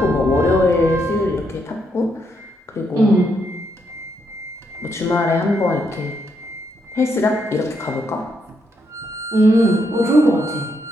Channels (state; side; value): normal; both; correlation 0.78